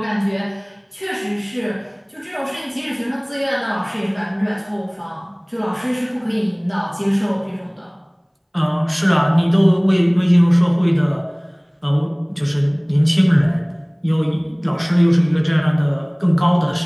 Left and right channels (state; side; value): identical; both; correlation 1.00